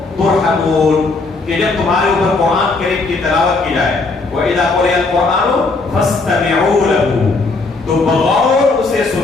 تُرْحَمُونَ. کہ جب تمہارے اوپر قرآن کریم کی تلاوت کی جائے وَإِذَا قُرِئَ الْقُرْآنُ فَاسْتَمِعُوا لَهُ، تو بغور اسے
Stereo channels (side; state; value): right; quieter; 3.7 dB